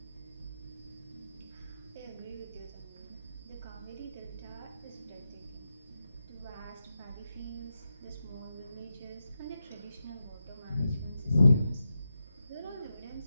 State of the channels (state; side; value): inverted; both; correlation -0.89